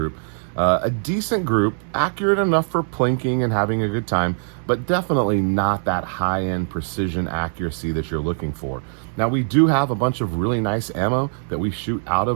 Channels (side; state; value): left; silent; 64 dB below the other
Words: A decent group, accurate enough for plinking and having a good time, but definitely not that high-end precision accuracy that you're looking for. Now, we do have a bunch of really nice ammo that we shoot out